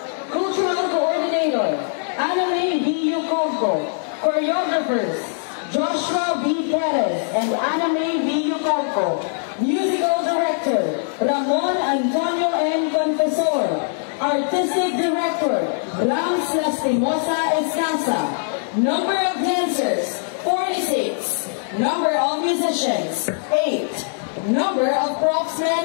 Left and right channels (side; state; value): right; silent; 65 dB below the other